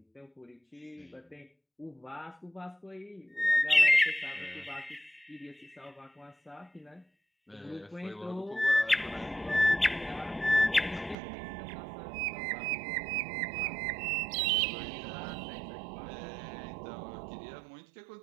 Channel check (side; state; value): left; drops out; at 11.2 s